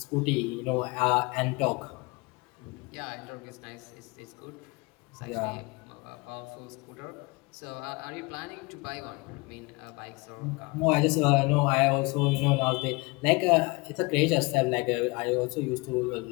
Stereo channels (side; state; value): right; quieter; 26.3 dB